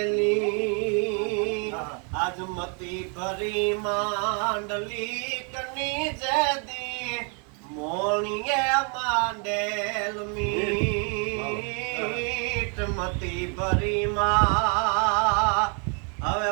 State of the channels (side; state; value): left; quieter; 38.4 dB